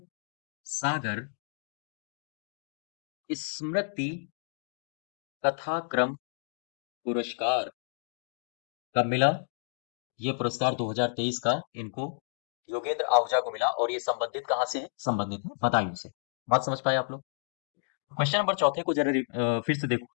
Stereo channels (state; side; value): silent; right; digital silence